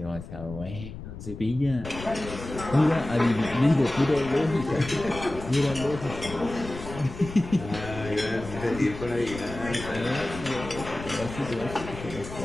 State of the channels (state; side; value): noise; left; rumble, 11 dB below the sound